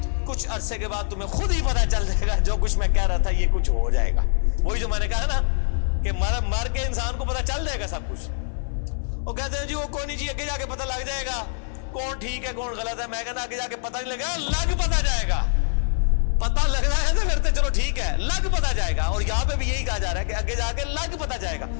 کچھ عرصے کے بعد تمہیں خود ہی پتہ چل جائے گا جو کچھ میں کہہ رہا تھا یہ کچھ ہو جائے گا. وہی جو میں نے کہا نا کہ مر کے انسان کو پتہ چل جائے گا سب کچھ. وہ کہتے ہیں جی وہ کوئی نہیں جی, آگے جا کے پتہ لگ جائے گا کون ٹھیک ہے کون غلط ہے. میں کہتا آگے جا کے پتہ نہیں لگا, لگ پتہ جائے گا. پتہ لگ رہا ہے تو پھر تو چلو ٹھیک ہے, لگ پتہ جائے گا. اور یہاں پہ بھی یہی کہا جا رہا ہے کہ آگے جا کے لگ پتہ جائے گا.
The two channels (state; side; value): silent; right; 62 dB below the other